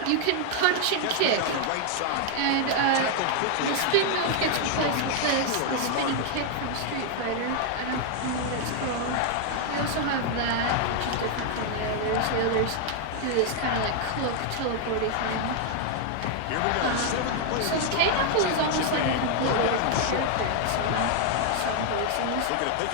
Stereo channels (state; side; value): different; both; correlation 0.00